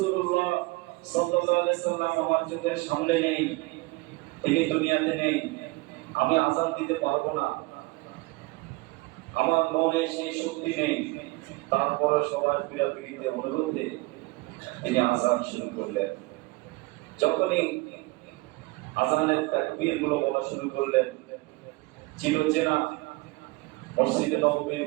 সাল্লাল্লাহু আলাইহি সাল্লাম আমার চোখের সামনে নেই, তিনি দুনিয়াতে নেই, আমি আযান দিতে পারবো না, আমার মনে সেই শক্তি নেই। তারপরে সবার পীড়াপিড়িতে অনুরোধে তিনি আযান শুরু করলেন। যখনই আযানের তাকবীর গুলো বলা শুরু করলেন, চিরচেনা মসজিদে নববীর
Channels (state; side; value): quieter; left; 23.5 dB